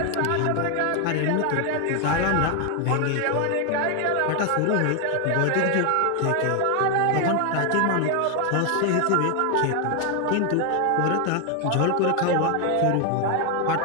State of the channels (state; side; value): different; both; correlation 0.01